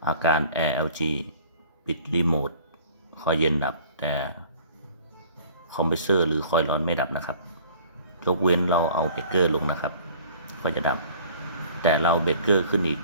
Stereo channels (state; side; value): inverted; both; correlation -0.50